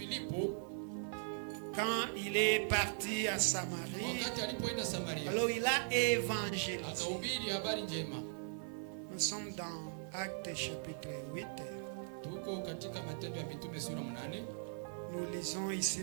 Quand il est parti à Samarie, alors il a évangélisé. Nous sommes dans Actes chapitre 8. Nous lisons ici,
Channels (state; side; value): silent; left; 51 dB below the other